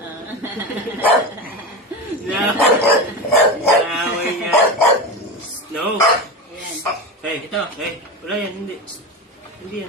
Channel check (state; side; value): normal; both; correlation 0.22